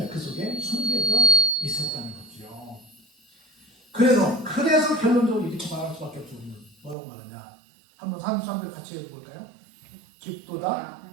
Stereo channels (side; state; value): left; drops out; at 7.0 s